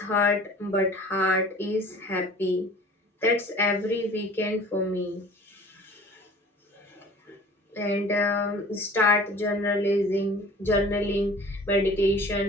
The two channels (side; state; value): both; normal; correlation 0.46